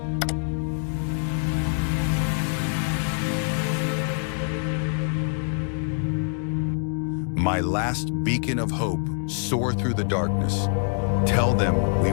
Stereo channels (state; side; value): silent; right; 60 dB below the other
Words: My last beacon of hope, soar through the darkness. Tell them we